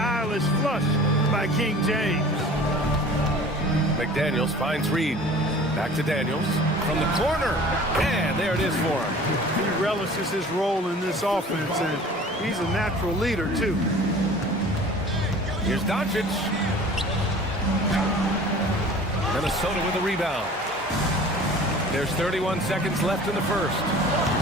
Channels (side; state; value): both; normal; correlation 0.44